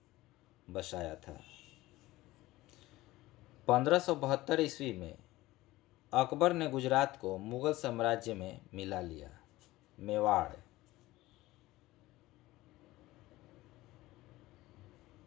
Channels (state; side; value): quieter; right; 18.1 dB